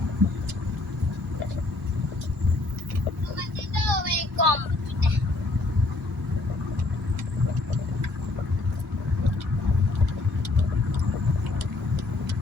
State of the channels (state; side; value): quieter; right; 3.1 dB